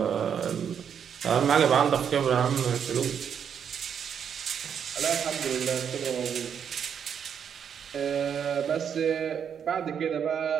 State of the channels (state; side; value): quieter; left; 7.9 dB